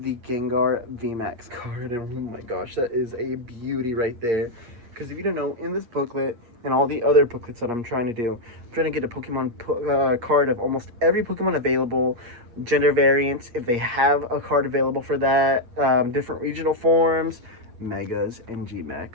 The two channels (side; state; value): left; late; 8.5 ms